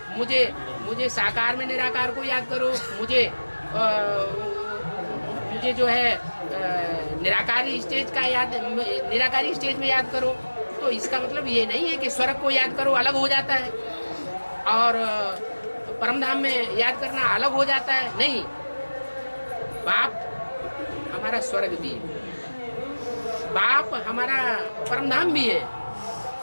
मुझे साकार में निराकार को याद करो, मुझे जो है निराकारी स्टेज का याद, निराकारी स्टेज में याद करो। तो इसका मतलब ये नहीं है कि स्वर्ग को याद करो अलग हो जाता है और परमधाम में याद करना अलग हो जाता है। नहीं, बाप हमारा स्वर्ग भी है, बाप हमारा परमधाम भी है।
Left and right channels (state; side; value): inverted; both; correlation -1.00